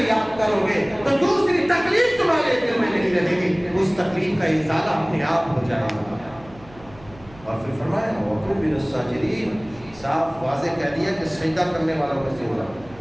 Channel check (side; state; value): right; noise; hum, 22 dB below the sound